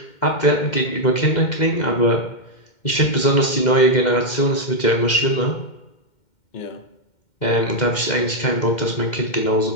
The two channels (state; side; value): late; right; 2.1 ms